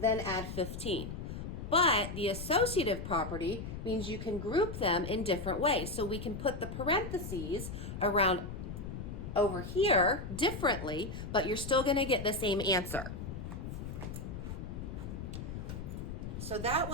add 15. But the associative property means you can group them in different ways. So we can put the parentheses around over here differently, but you're still going to get the same answer. So that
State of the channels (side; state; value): left; noise; rumble, 7 dB below the sound